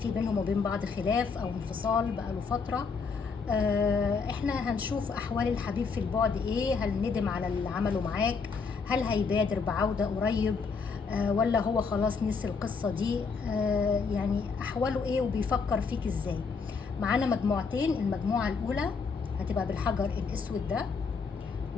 بينهم وبين بعض خلاف او انفصال بقاله فتره. احنا هنشوف احوال الحبيب في البعد ايه، هل ندم على اللي عمله معاك، هل هيبادر بعوده قريب، ولا هو خلاص نسي القصه دي، يعني احواله ايه وبيفكر فيك ازاي. معانا مجموعتين، المجموعه الاولى هتبقى بالحجر الاسود ده،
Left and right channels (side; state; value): right; quieter; 5.1 dB